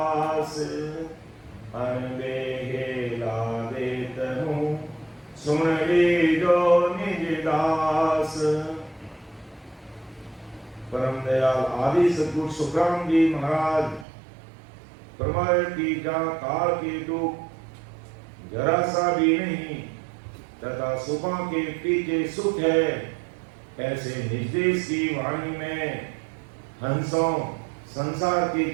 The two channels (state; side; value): drops out; left; at 14.1 s